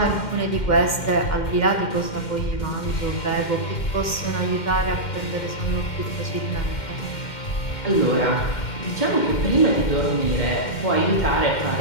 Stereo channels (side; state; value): right; late; 2.1 ms